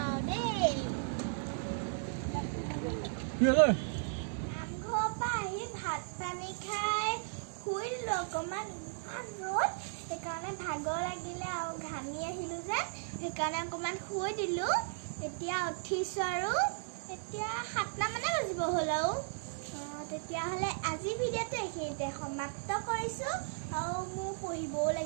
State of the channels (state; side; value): silent; left; digital silence